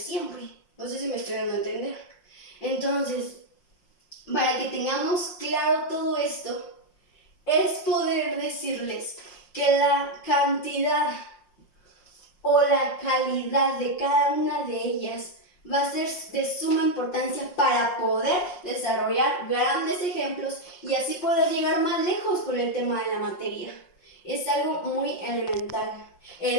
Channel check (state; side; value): late; right; 5.6 ms